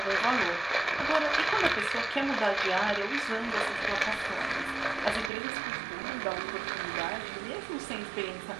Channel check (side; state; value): left; drops out; at 5.3 s